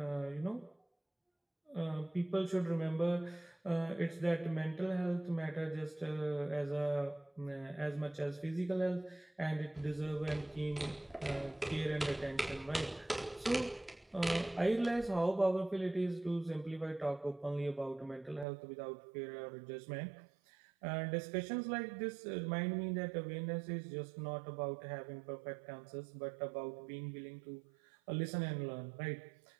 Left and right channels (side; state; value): left; drops out; at 18.4 s